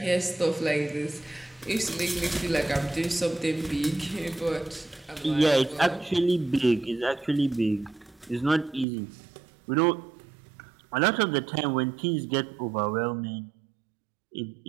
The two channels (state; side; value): drops out; left; at 8.8 s